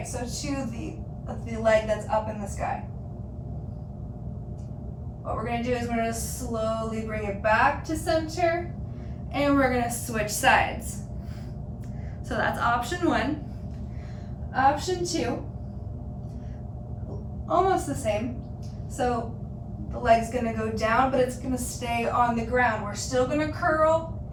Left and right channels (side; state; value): both; identical; correlation 1.00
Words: so to the leg that's up in the sky. What we're gonna do is we're gonna slowly bring it back to center, and we're gonna switch sides. So that's option one. Option two, almost the same. So the leg's gonna go down, but it's gonna stay on the ground. We're still gonna curl